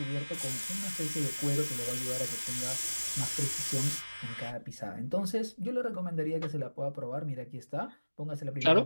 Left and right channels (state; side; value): inverted; both; correlation -1.00